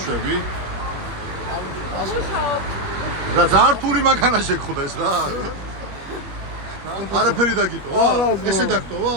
რა ზართული მანქანა შეგხვდეს რა? არაფერი დაგიტოვა? ესე დაგტოვა?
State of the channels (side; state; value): left; late; 21 ms